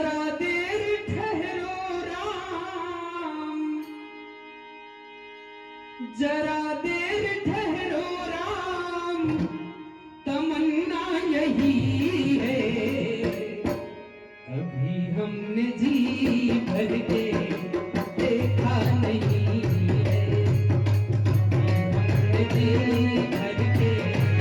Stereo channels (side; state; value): both; identical; correlation 1.00